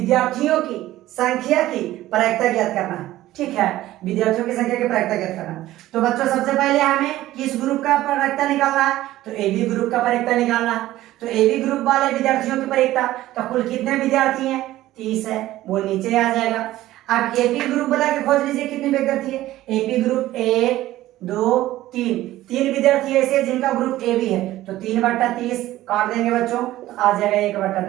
की संख्या की प्रायिकता ज्ञात करना है, ठीक है। विद्यार्थियों की संख्या की प्रायिकता ज्ञात करना है। तो बच्चों सबसे पहले हमें किस ग्रुप का प्रायिकता निकालना है, तो एबी ग्रुप का प्रायिकता निकालना है। तो एबी ग्रुप वाले विद्यार्थियों की प्रायिकता, तो कुल कितने विद्यार्थी हैं 30 है, वो नीचे आ जाएगा। अब एपी ग्रुप वाला के खोज लीजिए कितने विद्यार्थी है। एपी ग्रुप 1 2 3 विद्यार्थी ऐसे जिनका ग्रुप ए भी है, तो 3/30 काट देंगे बच्चों, तो आ जाएगा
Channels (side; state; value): left; quieter; 15.3 dB